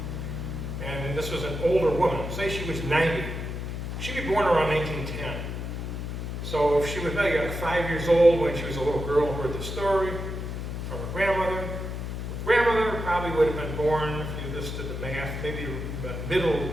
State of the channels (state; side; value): noise; left; hum, 5 dB below the sound